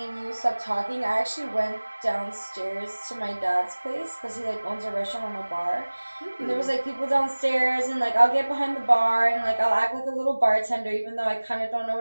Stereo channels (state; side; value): inverted; both; correlation -1.00